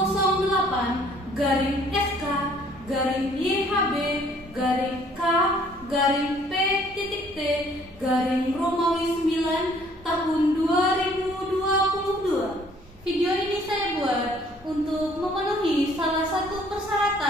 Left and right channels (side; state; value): both; normal; correlation 0.59